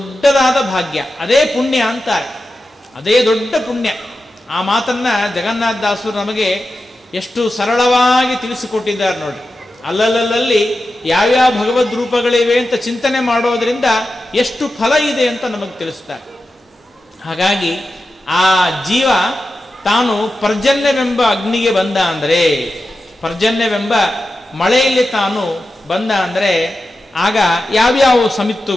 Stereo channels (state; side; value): normal; both; correlation 0.91